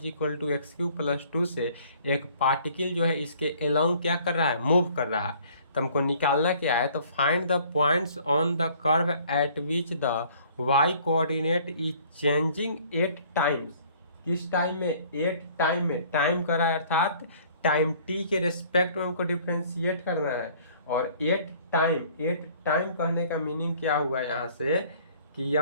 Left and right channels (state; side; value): inverted; both; correlation -0.56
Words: equal to x Q plus 2 से एक पार्टिकल जो है इसके अलोंग क्या कर रहा है, मूव कर रहा है। तो हमको निकालना क्या है, तो find the points on the curve at which the y coordinate is changing 8 times. किस टाइम में, 8 टाइम में। टाइम कर रहा है अर्थात टाइम t के रेस्पेक्ट में हमको डिफ्रेंशिएट करना है। और 8 टाइम कहने का मीनिंग क्या हुआ यहाँ से कि